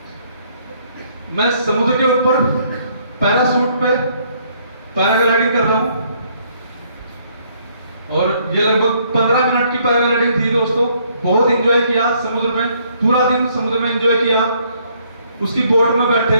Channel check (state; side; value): inverted; both; correlation -0.67